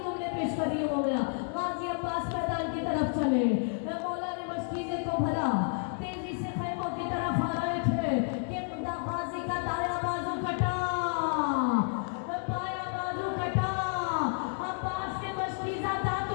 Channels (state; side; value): silent; right; 57 dB below the other